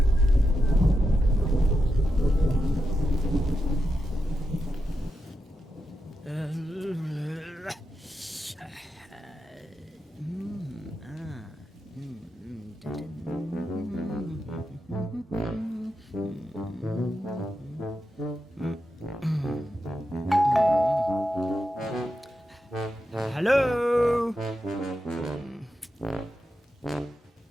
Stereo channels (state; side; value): normal; both; correlation 0.87